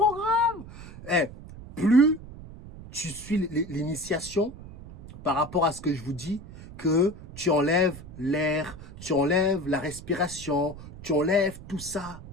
Plus tu suis l'initiation par rapport à ce que je vous dis, que tu enlèves l'air, tu enlèves la respiration, tu enlèves tout ça,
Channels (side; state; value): right; noise; rumble, 15 dB below the sound